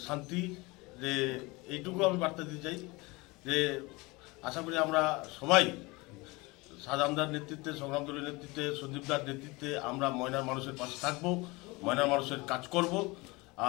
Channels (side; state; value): right; quieter; 24.0 dB